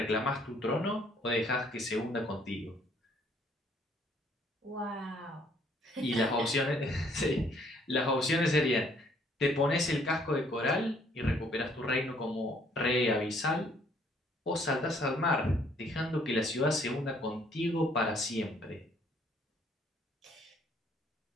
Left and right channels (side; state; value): both; normal; correlation 0.63